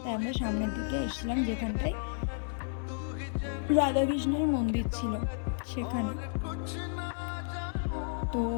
তাই আমরা সামনের দিকে এসেছিলাম যেখানটায় রাধাকৃষ্ণের মন্দির ছিল সেখানে। তো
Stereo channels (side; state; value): right; silent; digital silence